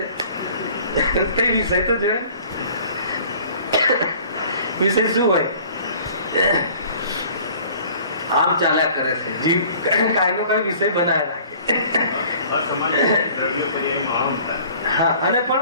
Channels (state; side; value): inverted; both; correlation -0.50